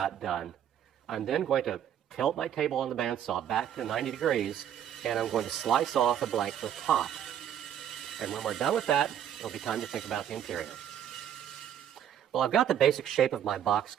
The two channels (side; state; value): left; quieter; 9.9 dB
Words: done, I'm then going to tilt my table on the bandsaw back to 90 degrees, and I'm going to slice off the blank to the top. And when we're done with that, it'll be time to think about the interior. Well, I've got the basic shape of my box